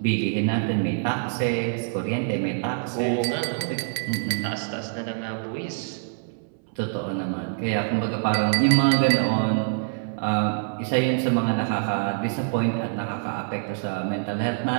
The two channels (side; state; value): left; silent; 62 dB below the other